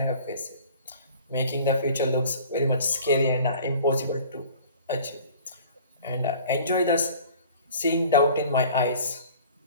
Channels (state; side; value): inverted; both; correlation -0.47